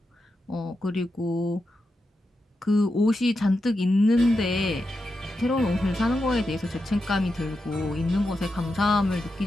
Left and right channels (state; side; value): normal; both; correlation 0.88